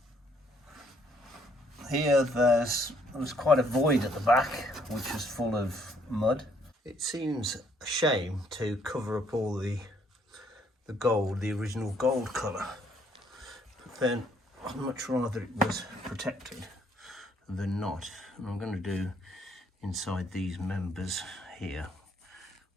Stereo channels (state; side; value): normal; both; correlation 0.67